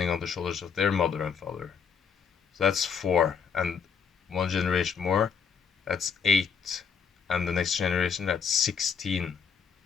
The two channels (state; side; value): quieter; right; 6.6 dB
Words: on the shoulders of their mother and father. So that's 4, and one generation more, that's 8, and the next generation, that's 16.